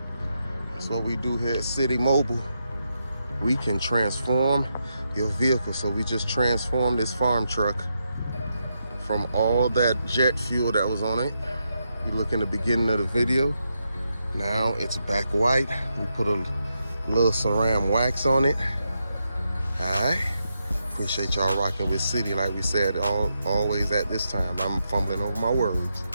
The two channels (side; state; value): both; inverted; correlation -0.83